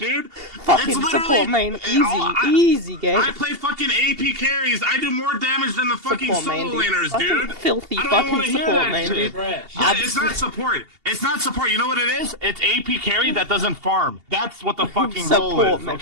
Fucking It's literally- support, man. Easy, I- easy game. I play fucking AP carries. I do more damage than the fucking Support, man, solo dude. laners, Fucking dude. filthy I don't even wanna fucking hear support, that man, shit. dude. Trash. Yeah, it's not support. It's not support. You know what it is? It's AP carry that doesn't farm. That's what the fucking role Support, is, man.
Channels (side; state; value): left; late; 2.8 ms